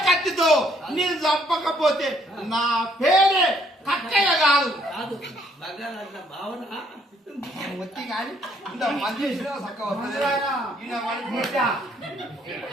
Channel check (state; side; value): normal; both; correlation 0.67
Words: కత్తితో నేను చంపకపోతే నా పేరే కక్కయ్య కాదు. వచ్చి కానీ ఇంత మంది